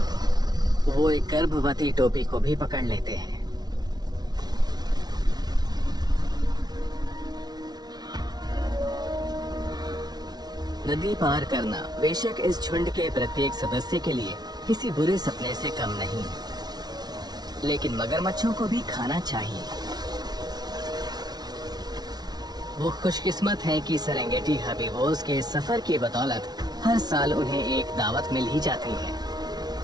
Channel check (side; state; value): left; late; 0.19 ms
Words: वो एक गर्भवती टोपी को भी पकड़ लेते हैं। नदी पार करना बेशक इस झुंड के प्रत्येक सदस्य के लिए किसी बुरे सपने से कम नहीं, लेकिन मगरमच्छों को भी खाना चाहिए। वो खुशकिस्मत हैं कि सेरेंगेटी हर्बीवोर्स के सफर की बदौलत हर साल उन्हें एक दावत मिल ही जाती है।